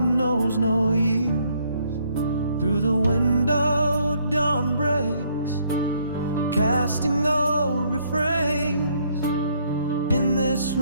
no years. Through the window dawn breaks, casting old refrains. In this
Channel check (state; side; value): inverted; both; correlation -0.68